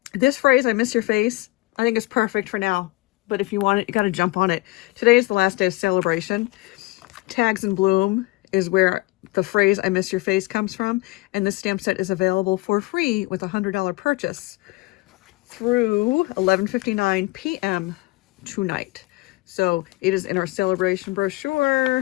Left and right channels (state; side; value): quieter; right; 22.1 dB